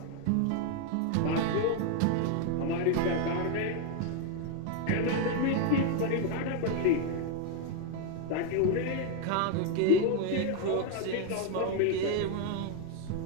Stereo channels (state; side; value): different; both; correlation 0.01